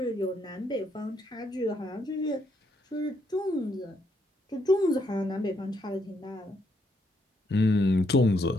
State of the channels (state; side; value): normal; both; correlation 0.75